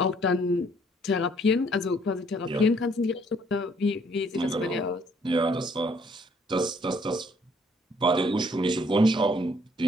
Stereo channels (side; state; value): both; normal; correlation 0.64